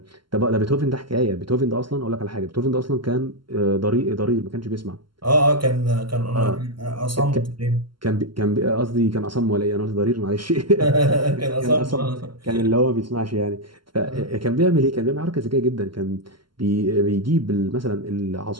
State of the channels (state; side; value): late; left; 0.72 ms